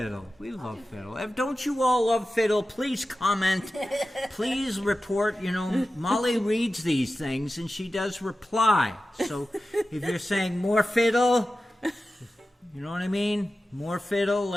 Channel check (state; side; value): normal; both; correlation 0.94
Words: We love fiddle. Don't you all love fiddle? Please comment. Please report. You know, Molly reads these things and she does reply. So if you're saying more fiddle, you know what I mean? More fiddle,